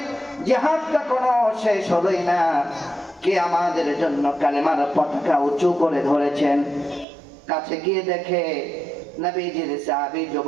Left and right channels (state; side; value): drops out; left; at 7.1 s